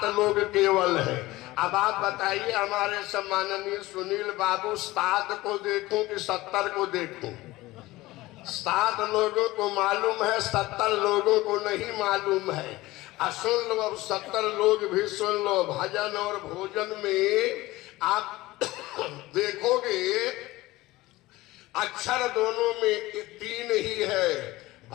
लोग केवल है। अब आप बताइए हमारे सम्माननीय सुनील बाबू, 7 को देखूं कि 70 को देखूं? 7 लोगों को मालूम है, 70 लोगों को नहीं मालूम है। सुन लो, अब 70 लोग भी सुन लो। भजन और भोजन में आप देखोगे अक्षर दोनों में 3 ही है।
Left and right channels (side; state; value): right; quieter; 18.8 dB